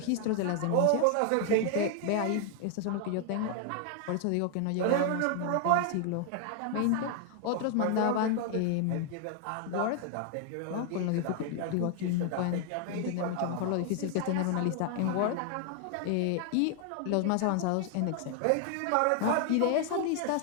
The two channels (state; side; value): different; both; correlation 0.00